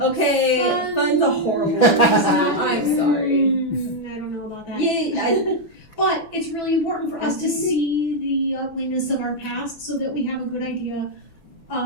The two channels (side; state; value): right; late; 5.9 ms